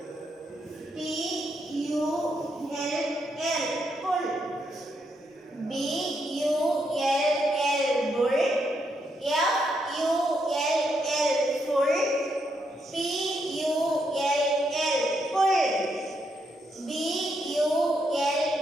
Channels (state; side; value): normal; both; correlation 0.79